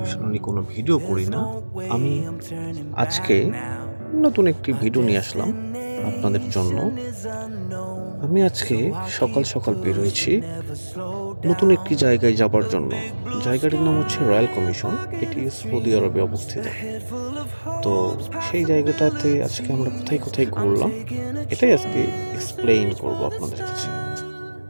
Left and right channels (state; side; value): inverted; both; correlation -1.00